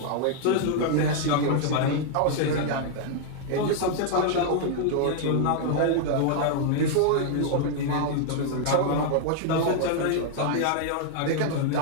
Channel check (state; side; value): different; both; correlation 0.00